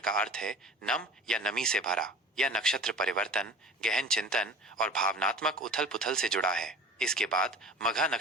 अर्थ है नम या नमी से भरा। यह नक्षत्र परिवर्तन, गहन चिंतन और भावनात्मक उथल पुथल से जुड़ा है। इसके बाद मघा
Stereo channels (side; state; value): both; normal; correlation 0.39